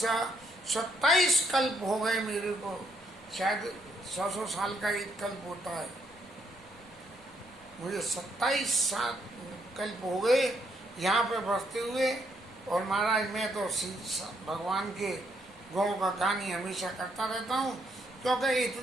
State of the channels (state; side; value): noise; left; rumble, 28 dB below the sound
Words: 27 कल्प हो गए मेरे को, शायद 100 साल का एक कल्प होता है, मुझे 27 कल्प हो गए यहाँ पे बसते हुए। और महाराज मैं तो भगवान के गुणों का गान ही हमेशा करता रहता हूँ, क्योंकि